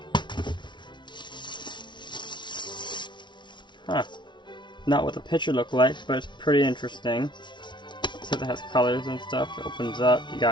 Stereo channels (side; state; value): right; late; 0.23 ms